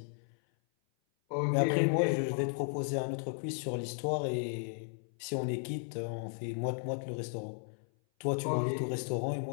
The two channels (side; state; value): right; silent; 55 dB below the other